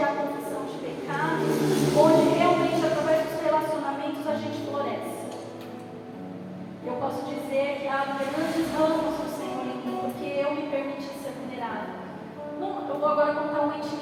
há confissão de pecados, onde realmente através dos relacionamentos a gente floresce. Eu posso dizer que há grandes ramos do Senhor em mim, porque eu me permiti ser vulnerável. Eu vou agora contar uma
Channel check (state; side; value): identical; both; correlation 1.00